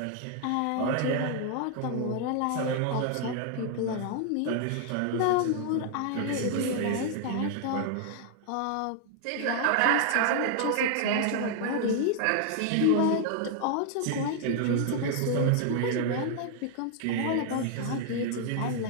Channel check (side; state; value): both; different; correlation 0.00